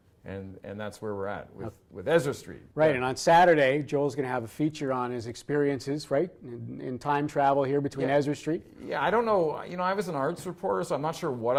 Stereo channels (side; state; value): both; identical; correlation 1.00